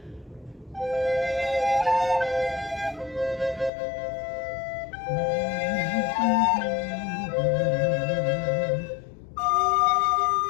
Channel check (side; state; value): right; drops out; at 3.7 s